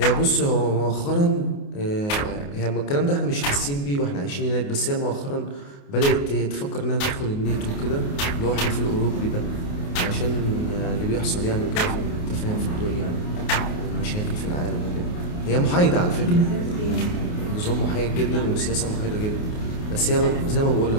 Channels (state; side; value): late; right; 28 ms